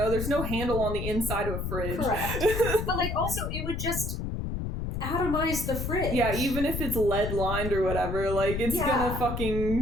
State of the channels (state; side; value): noise; left; rumble, 3 dB below the sound